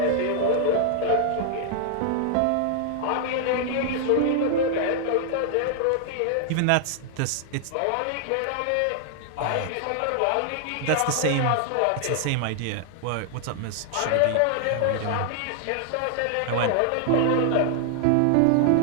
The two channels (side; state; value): both; different; correlation -0.01